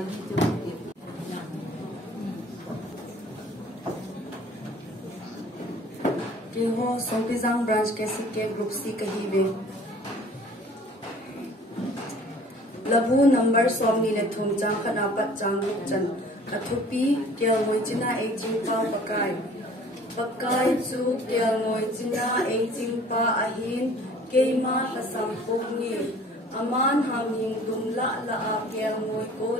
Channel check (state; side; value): normal; both; correlation 0.50